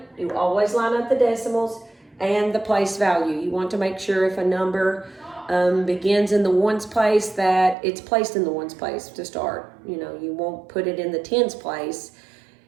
you always line up the decimals and the place value. You want to make sure if a number begins in the ones place that it's placed in the ones place to start. You won't put it in the tens place.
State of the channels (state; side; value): drops out; left; at 7.8 s